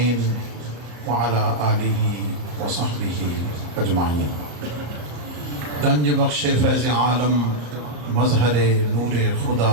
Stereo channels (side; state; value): left; late; 34 ms